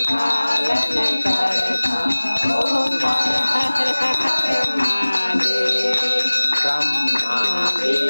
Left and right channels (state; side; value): inverted; both; correlation -1.00